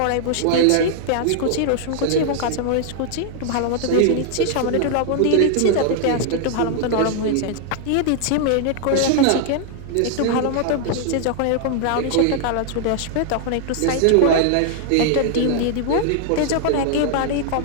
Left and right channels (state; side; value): different; both; correlation 0.00